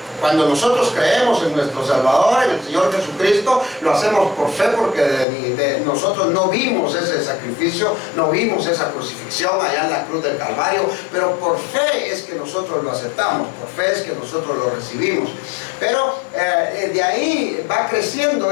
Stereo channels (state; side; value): drops out; right; at 5.2 s